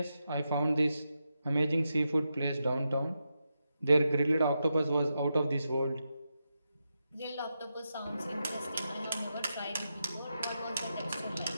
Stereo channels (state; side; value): inverted; both; correlation -0.87